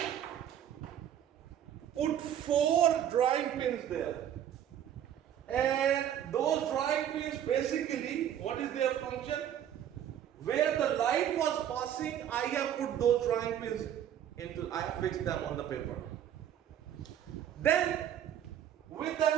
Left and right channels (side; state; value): left; quieter; 10.2 dB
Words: put 4 drawing pins there. And those drawing pins basically, what is their function? Where the light was passing, I have put those drawing pins into, I have fixed them on the paper. Then, with the